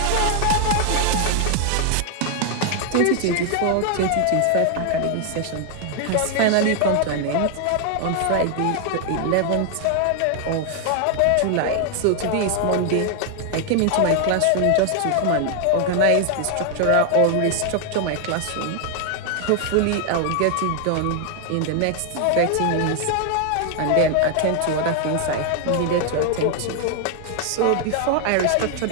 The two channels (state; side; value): different; both; correlation 0.00